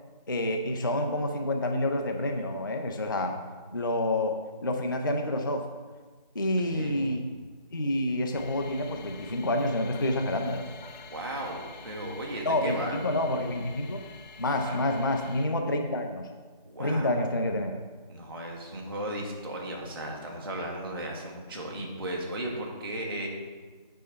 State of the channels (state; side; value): inverted; both; correlation -0.50